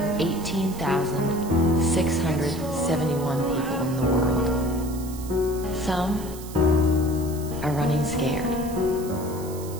people in the world. Some are running scared.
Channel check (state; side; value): noise; right; hiss, 16 dB below the sound